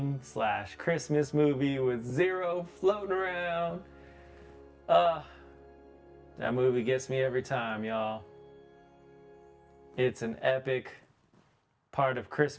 / Christmas movie with Zero floating around. That movie gets me every time, y'all. It's an epic part of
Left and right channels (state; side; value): identical; both; correlation 1.00